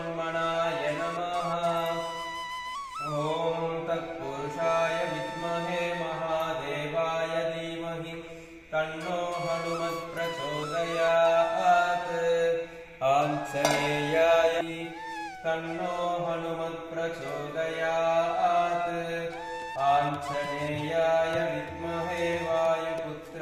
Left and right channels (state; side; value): identical; both; correlation 1.00